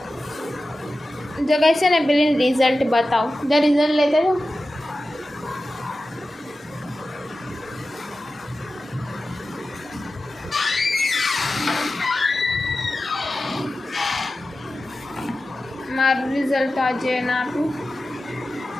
જગ્યાએ છે ને પેલી રિઝલ્ટ બતાવો, જો રિઝલ્ટ લેતા જાઓ। મારું રિઝલ્ટ આજે ના આપ્યું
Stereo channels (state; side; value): normal; both; correlation 0.94